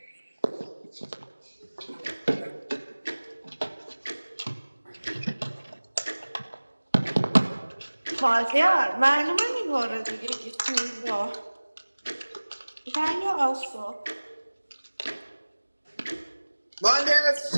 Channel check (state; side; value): inverted; both; correlation -1.00